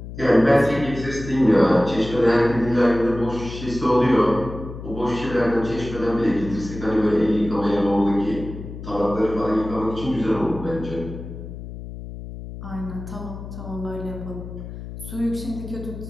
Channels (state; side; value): noise; left; hum, 11 dB below the sound